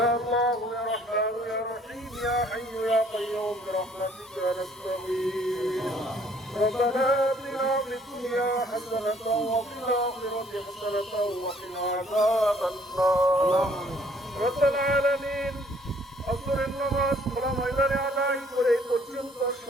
الله يا رحمن يا رحيم يا حي يا قيوم برحمتك نستغيث. ربنا آتنا في الدنيا حسنة وفي الآخرة حسنة وقنا عذاب النار. رب العالمين আসরের নামাজ খোলা ময়দানে আদায় করে পর্যন্ত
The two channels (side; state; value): both; normal; correlation 0.61